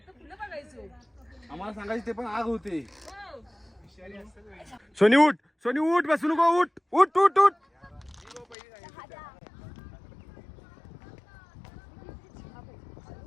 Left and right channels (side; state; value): right; drops out; at 8.6 s